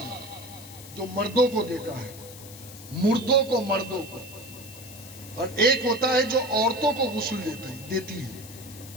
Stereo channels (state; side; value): noise; left; hiss, 16 dB below the sound